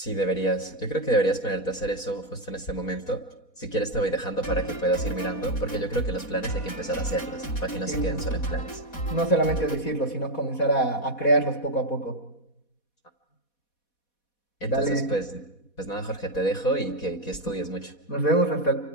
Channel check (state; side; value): late; right; 4.2 ms